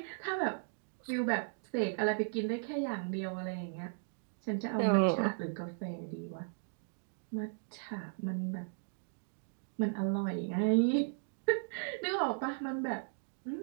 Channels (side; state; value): left; silent; digital silence